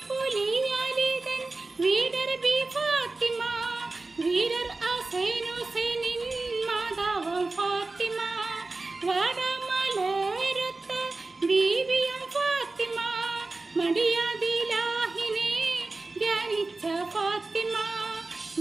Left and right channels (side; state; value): left; quieter; 3.4 dB